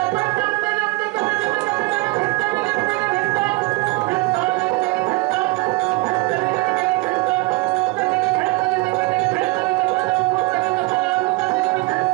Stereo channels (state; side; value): quieter; left; 22.4 dB